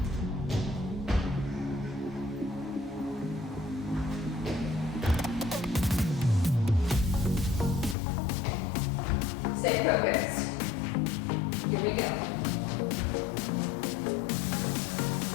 Stay focused. Here we go.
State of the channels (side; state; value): right; drops out; at 8.0 s